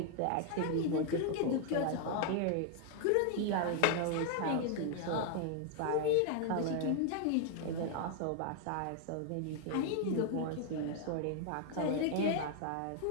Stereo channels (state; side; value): different; both; correlation 0.00